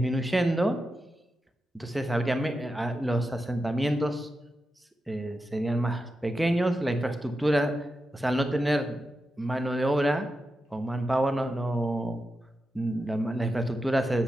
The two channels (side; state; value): both; normal; correlation 0.89